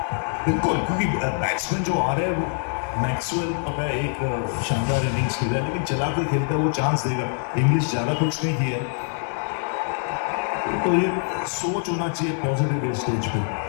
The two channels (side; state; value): right; silent; 62 dB below the other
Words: बिल्कुल, क्योंकि बैट्समैन जो आ रहे हैं वो मैक्सवेल पता है एक शानदार इनिंग्स खेला है, लेकिन चला कर खेलता है, वो चांस देगा। इंग्लिश ज्यादा कुछ नहीं किया, तो ये सोच होना चाहिए पॉजिटिव स्टेज पे,